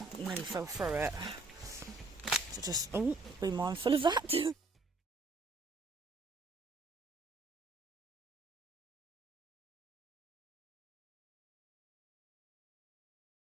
nearly fell through it. So just, be mindful of that.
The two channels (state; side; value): quieter; left; 3.4 dB